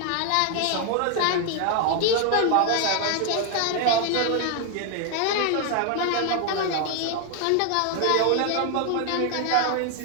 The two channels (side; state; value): both; different; correlation 0.01